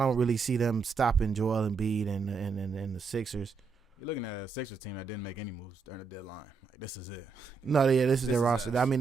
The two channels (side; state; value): left; quieter; 5.2 dB